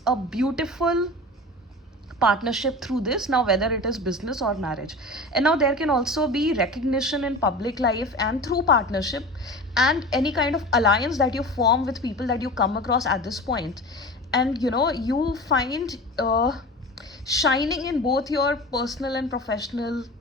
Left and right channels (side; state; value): both; normal; correlation 0.33